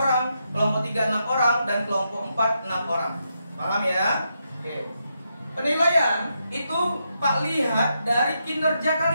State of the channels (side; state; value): both; inverted; correlation -0.83